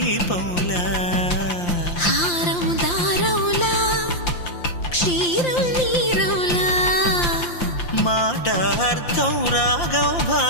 హారం దారములా క్షీరం నీరములా మాట అర్థం రాగం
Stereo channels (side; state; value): right; late; 5.8 ms